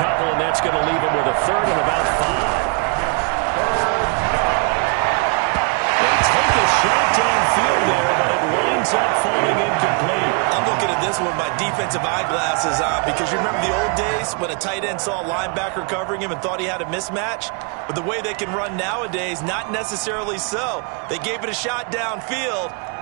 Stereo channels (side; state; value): left; quieter; 36.6 dB